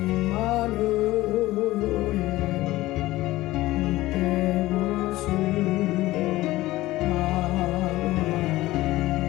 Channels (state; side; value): quieter; right; 17.4 dB